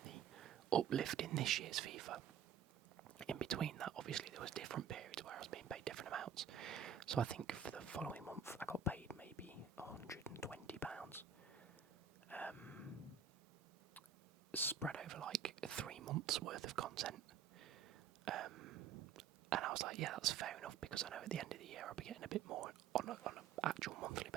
the uplift in this year's FIFA. In between that, obviously, there was different periods where I was being paid different amounts. So I think for the following month, I got paid maybe £120, spread over like 3 months worth of content. And I was like, yeah, that's fair enough, because I know at the end of the year I'll be getting a bit more on an actual monthly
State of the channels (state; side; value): quieter; left; 7.6 dB